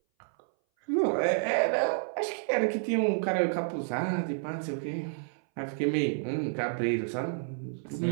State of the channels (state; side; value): silent; left; 58 dB below the other